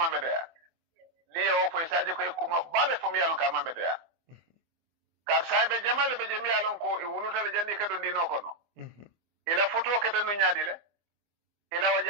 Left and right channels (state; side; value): late; left; 24 ms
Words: beda li o fo isaje ko kuma bale fo mi yalon ka ma beda kar saybe jamale be jemi yalon ko e wulutale jandi ka do dino kono ila futu ke tan nyaadile ila